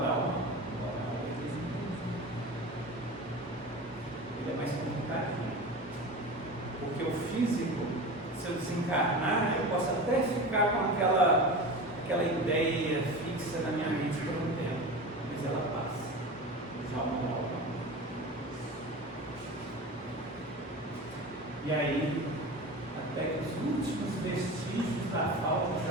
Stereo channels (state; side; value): normal; both; correlation 0.30